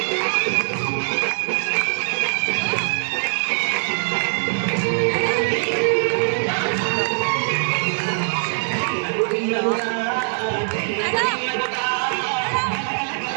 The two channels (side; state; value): left; silent; 56 dB below the other